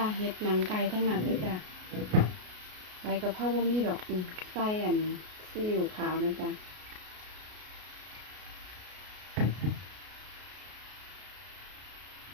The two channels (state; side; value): late; left; 33 ms